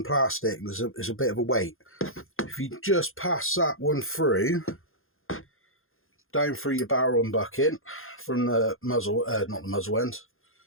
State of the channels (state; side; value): late; right; 0.60 ms